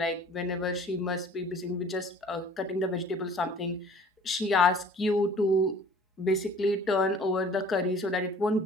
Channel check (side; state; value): both; normal; correlation 0.50